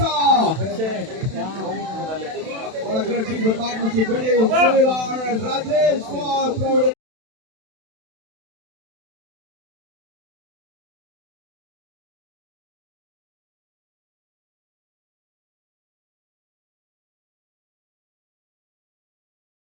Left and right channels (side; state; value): left; late; 32 ms